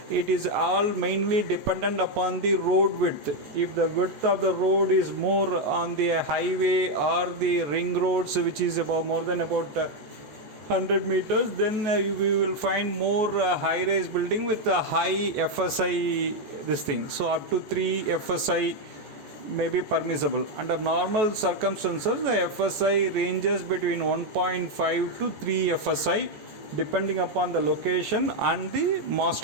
It is all mainly dependent upon the road width. If the width of the road is more on the highway or the ring roads, which is about more than about 100 meters, then we will find more high-rise building with a high FSI this thing. So up to 3 FSI may be permissible. Under normal circumstances, the FSI ranges between 1.5 to 3 FSI depending upon the location and the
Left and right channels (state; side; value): late; left; 14 ms